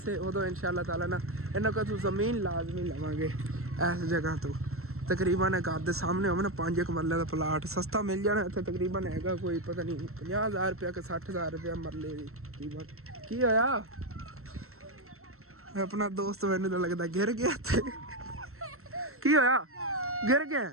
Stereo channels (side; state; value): left; late; 0.63 ms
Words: ਉਦੋਂ ਇਨਸ਼ਾਅੱਲਾ ਤਾਲਾ ਨਾ ਇਹਨਾਂ ਕੋਲ ਜ਼ਮੀਨ ਲਾਜ਼ਮੀ ਲਵਾਂਗੇ ਇਸ ਜਗ੍ਹਾ ਤੋਂ। ਤਕਰੀਬਨ ਘਰ ਦੇ ਸਾਹਮਣੇ ਹੋਵੇ ਨਾ 5 ਮਰਲੇ ਦਾ ਪਲਾਟ ਸਸਤਾ ਮਿਲ ਜਾਣਾ ਇੱਥੇ, ਤਕਰੀਬਨ ਹੈਗਾ ਕੋਈ ਪਤਾ ਨਹੀਂ 50,000 ਰੁਪਇਆ ਕਿ 60,000 ਰੁਪਇਆ ਮਰਲੇ ਦੀ ਕੀਮਤ। ਕੀ ਹੋਇਆ ਆਪਣਾ ਦੋਸਤ ਮੈਨੂੰ ਤਾਂ ਲੱਗਦਾ ਗਿਰ ਗਿਆ ਇੱਥੇ। ਕੀ ਹੋਇਆ गिर गया